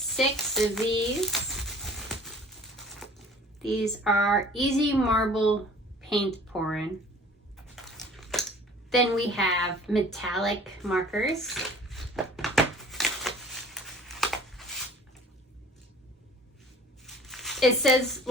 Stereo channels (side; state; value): both; normal; correlation 0.49